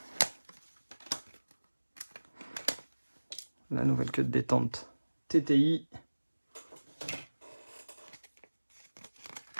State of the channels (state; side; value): inverted; both; correlation -1.00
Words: la nouvelle queue de détente TTI.